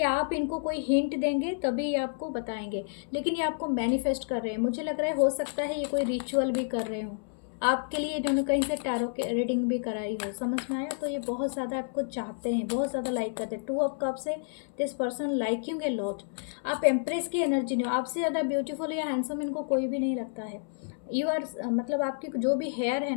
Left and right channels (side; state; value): right; silent; 58 dB below the other